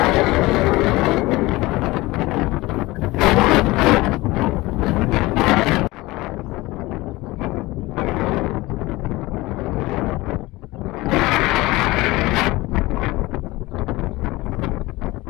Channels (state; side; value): quieter; right; 20.5 dB